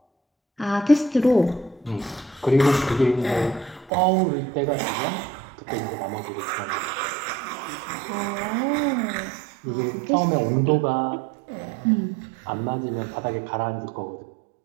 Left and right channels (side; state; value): left; drops out; at 3.9 s